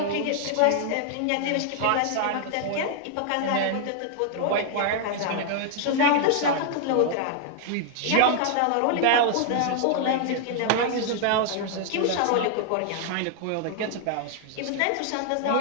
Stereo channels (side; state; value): both; different; correlation 0.00